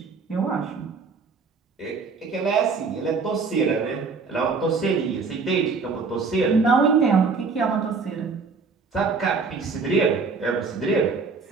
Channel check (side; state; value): left; quieter; 4.7 dB